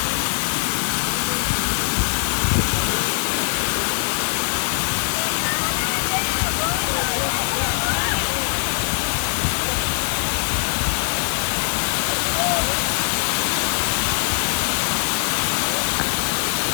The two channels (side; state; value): right; silent; 65 dB below the other